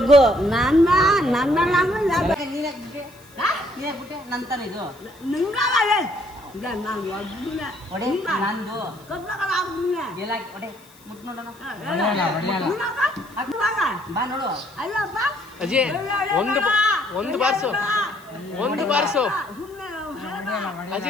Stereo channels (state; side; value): noise; left; hiss, 26 dB below the sound